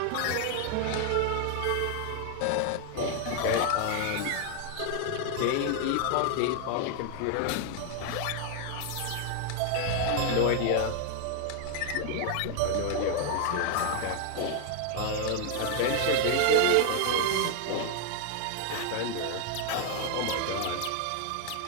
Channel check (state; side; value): different; both; correlation 0.00